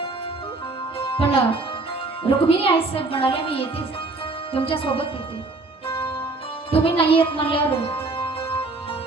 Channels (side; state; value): left; quieter; 3.3 dB